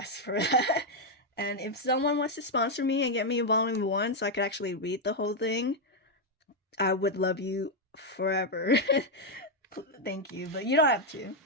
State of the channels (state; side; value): normal; both; correlation 0.01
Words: for that. And if someone wants to sponsor me and get me Volume 1 so I could actually read the whole thing, I would love you forever. Thank you, but you don't have to.